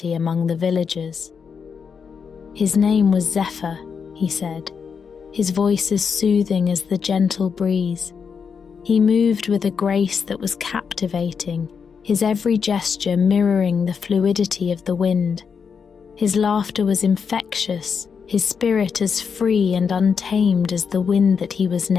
among the villagers. His name was Zephyr, he said, his voice as soothing as the gentle breeze. He moved with a grace that was captivating, his every gesture mirroring the fluidity of the wind. His laughter was infectious, his spirit as free and untamed as the wind that he was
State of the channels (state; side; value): quieter; right; 6.2 dB